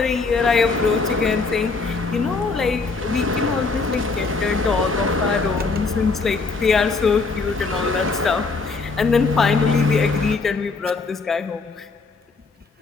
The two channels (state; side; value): quieter; right; 4.2 dB